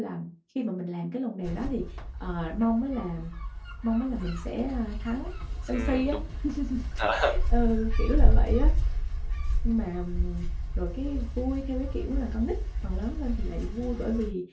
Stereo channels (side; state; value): both; identical; correlation 1.00